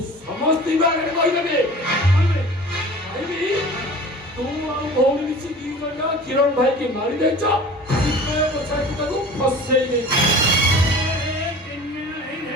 ସମସ୍ତଙ୍କ ଆଗରେ କହିଦେବି କହିବି ତୁ ଆଉ ଭଉଣୀ ମିଶି ଦି ଜଣ କିରଣ ଭାଇକି ମାରି ଦେଇଛ, ତାକୁ ଫସେଇ ଦେଇଛ।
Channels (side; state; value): both; normal; correlation 0.42